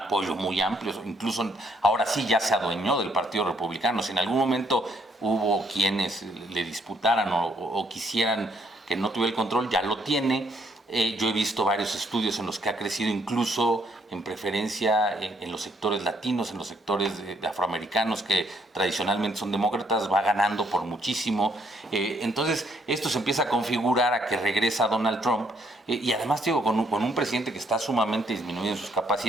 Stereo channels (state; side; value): normal; both; correlation 0.69